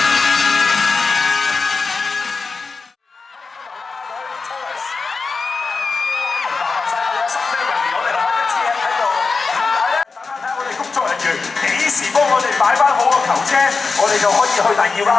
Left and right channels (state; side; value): quieter; right; 4.4 dB